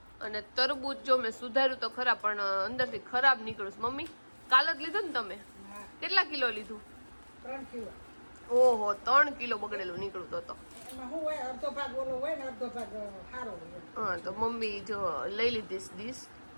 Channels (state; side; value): inverted; both; correlation -1.00